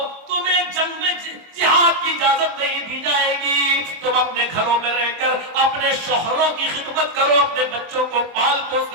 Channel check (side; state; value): left; late; 24 ms